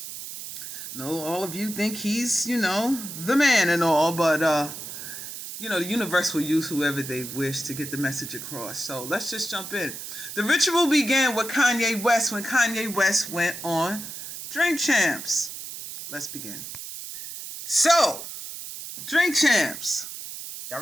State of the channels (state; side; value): noise; right; hiss, 9 dB below the sound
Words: No, all of you think he's, the man and all, but, the universe will use whoever they wish to get the message across. So let's just jump in. The ritual began with Kanye West when Kanye West went on Drink Champs. Let's begin. So, Drink Champs. Y'all